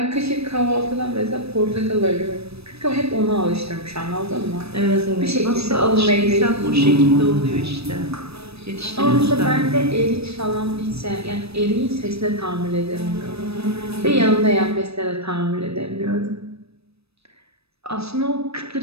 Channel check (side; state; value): left; late; 0.78 ms